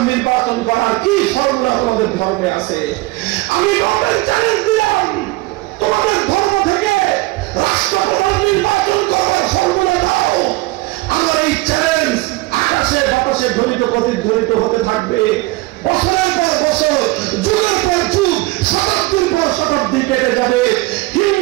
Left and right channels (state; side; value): quieter; left; 21.3 dB